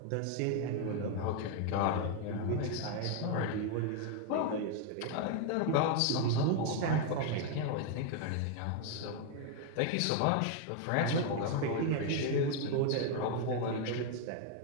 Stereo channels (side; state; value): both; different; correlation 0.01